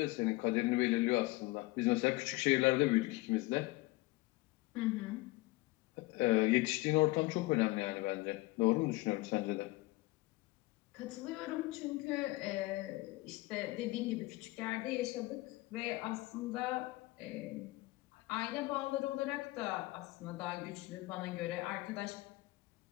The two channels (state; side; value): quieter; right; 20.7 dB